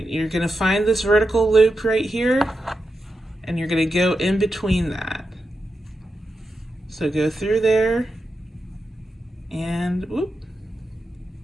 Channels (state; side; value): normal; both; correlation 0.88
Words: you're gonna find this vertical loop right here, and you're going to go in between that. So go through there, and whoop,